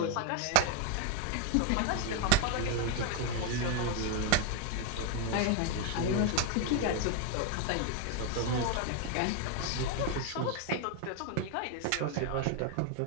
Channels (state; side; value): different; both; correlation 0.00